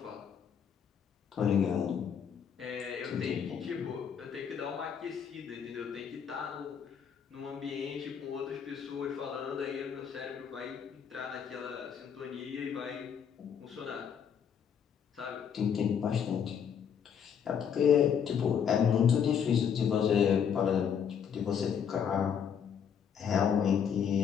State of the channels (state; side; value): quieter; right; 7.7 dB